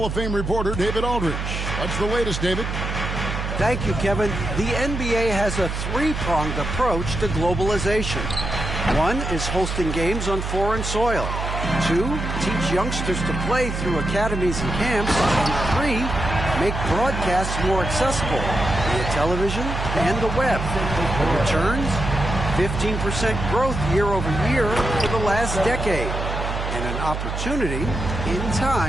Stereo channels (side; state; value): right; noise; hum, 4 dB below the sound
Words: of Fame reporter, David Aldridge. What's the latest, David? Thank you, Kevin. The NBA has a 3-pronged approach to globalization. 1 is hosting games on foreign soil. 2, teach youngsters to play through academies and camps. And 3, make broadcasts more accessible via television and the web. Returns, 15% growth year over year for the last decade. and an opportunity in